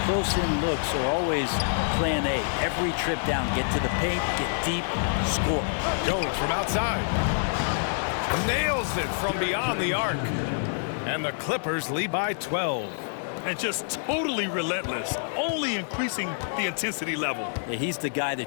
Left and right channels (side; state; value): right; silent; digital silence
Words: close-in looks are always plan A. Every trip down, get to the paint, get deep, score. Jones from outside. Nails it from beyond the arc. And the Clippers lead by 12. And just totally relentless, only increasing the intensity level. Yeah, he's the guy